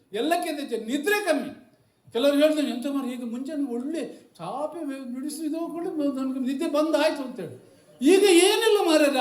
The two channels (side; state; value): both; identical; correlation 1.00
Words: ಎಲ್ಲಕ್ಕಿಂತ ನಿದ್ರೆ ಕಮ್ಮಿ. ಕೆಲವರು ಹೇಳ್ತಾರೆ ಎಂತ ಮಾಡಿ ಈಗ ಮುಂಚೆನೇ ಒಳ್ಳೆ ಚಾಪೆ ನುಡಿಸಿದೋಕೊಂಡು ನನಗೆ ನಿದ್ದೆ ಬಂದಾಯ್ತು ಅಂತೇಳಿ, ಈಗ ಏನಿಲ್ಲ